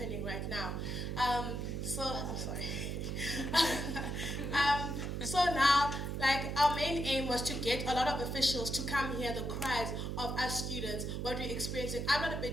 right now. I'm sorry. So now, like, our main aim was to get a lot of officials to come hear the cries of us students, what we're experiencing. I'm not a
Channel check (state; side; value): noise; right; hum, 3 dB below the sound